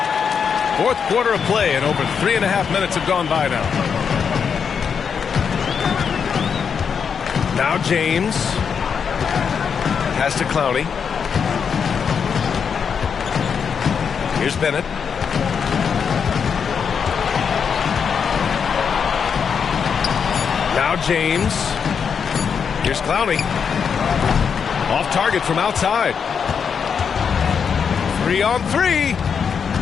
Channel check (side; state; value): right; quieter; 6.6 dB